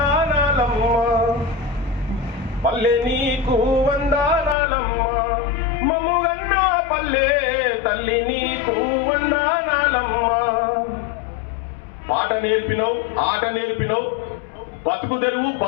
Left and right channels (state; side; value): drops out; right; at 4.5 s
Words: పల్లె నీకు వందనాలమ్మ, మమ్ముగన్నా పల్లె తల్లి నీకు వందనాలమ్మ. పాట నేర్పినవు, ఆట నేర్పినవు, బతుకు తెరువు